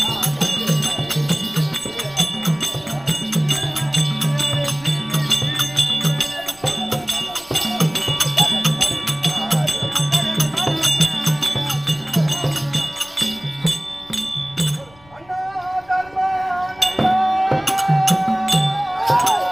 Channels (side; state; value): left; noise; rumble, 26 dB below the sound